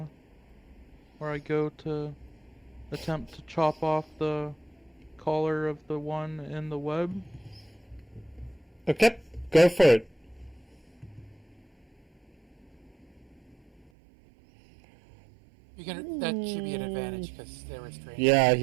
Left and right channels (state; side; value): drops out; left; at 13.9 s